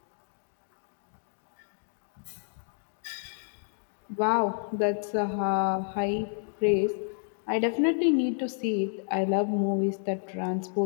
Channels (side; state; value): right; silent; digital silence